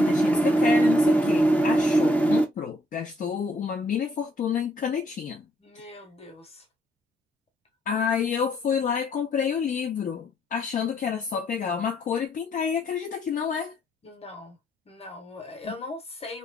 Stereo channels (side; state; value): both; normal; correlation 0.71